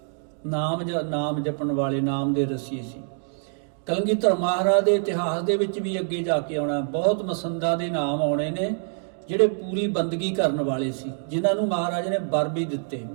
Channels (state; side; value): silent; left; digital silence